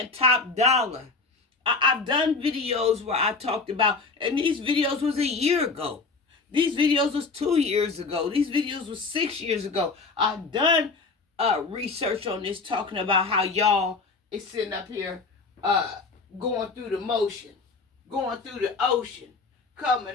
top dollar. I've done videos where I talked about, and these videos was a year ago. These videos was 2 years ago. These videos was 6 years ago. I've done research on this, talking about how y'all is sitting up here going through the motion, going through the ocean, coming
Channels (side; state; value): right; quieter; 4.1 dB